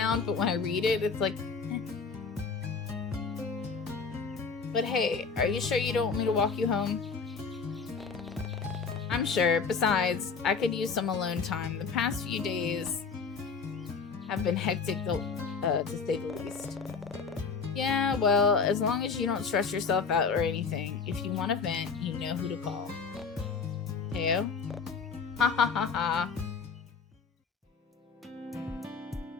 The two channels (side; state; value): right; quieter; 5.2 dB